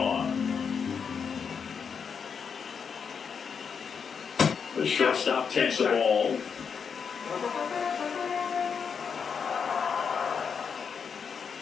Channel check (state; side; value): quieter; right; 6.4 dB